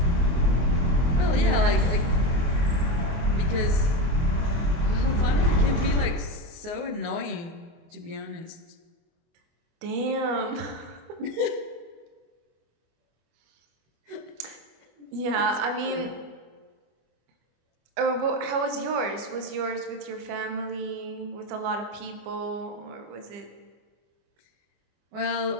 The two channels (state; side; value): late; left; 25 ms